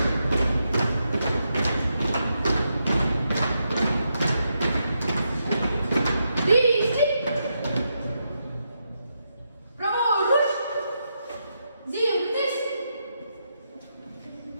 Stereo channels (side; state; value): both; inverted; correlation -0.83